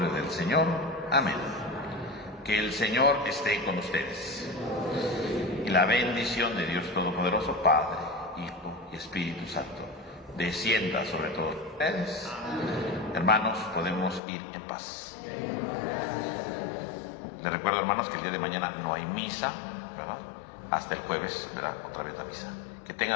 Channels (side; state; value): right; drops out; at 14.2 s